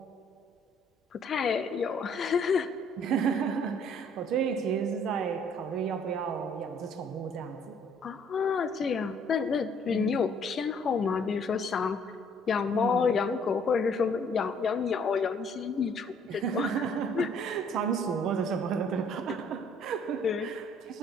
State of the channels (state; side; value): normal; both; correlation 0.61